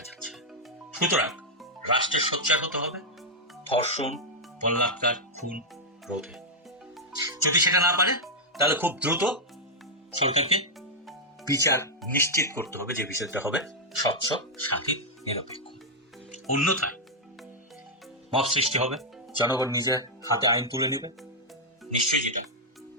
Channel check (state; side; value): normal; both; correlation -0.03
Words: যাচ্ছে। সুতরাং রাষ্ট্রের সোচ্চার হতে হবে ধর্ষণ, বলাৎকার, খুন রোধে। যদি সেটা না পারে তাহলে খুব দ্রুত সরকারকে বিচার নিশ্চিত করতে হবে, যে বিচারটা হবে স্বচ্ছ, স্বাধীন, নিরপেক্ষ। অন্যথায় মব সৃষ্টি হবে, জনগণ নিজের হাতে আইন তুলে নেবে, নিশ্চয়ই যেটা